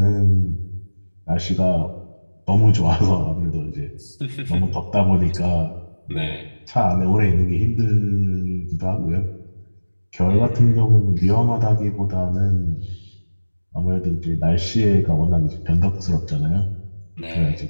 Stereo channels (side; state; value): both; inverted; correlation -1.00